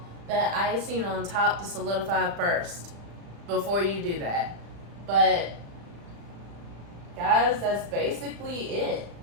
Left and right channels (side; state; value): left; late; 35 ms